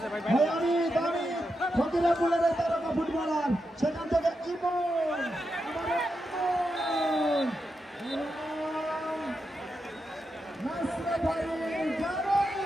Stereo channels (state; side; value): normal; both; correlation 0.86